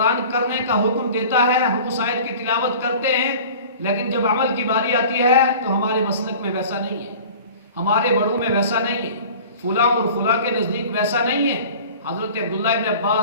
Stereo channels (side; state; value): both; inverted; correlation -0.43